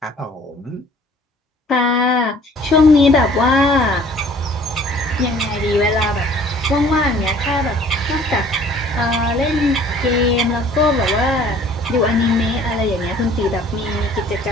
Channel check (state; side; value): normal; both; correlation 0.53